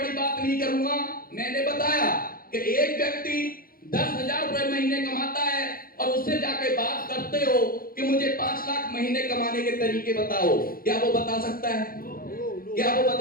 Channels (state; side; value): late; right; 0.42 ms